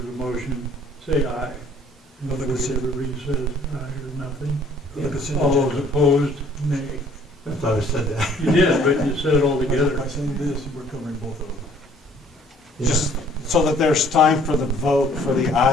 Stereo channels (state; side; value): normal; both; correlation 0.58